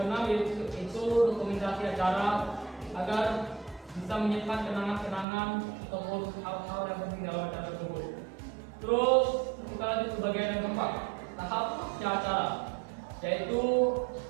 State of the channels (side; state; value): left; drops out; at 5.2 s